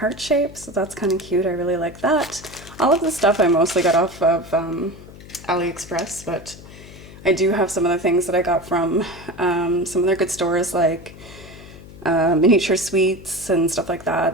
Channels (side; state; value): left; noise; hum, 18 dB below the sound